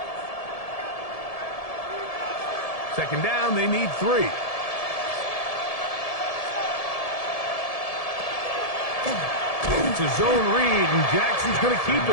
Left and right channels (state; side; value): late; right; 1.7 ms